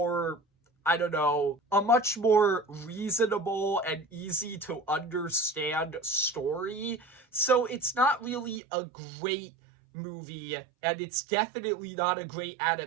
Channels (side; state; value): left; drops out; at 8.6 s